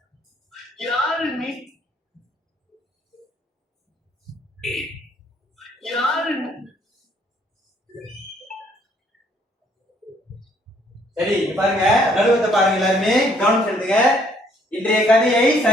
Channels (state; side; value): normal; both; correlation 0.65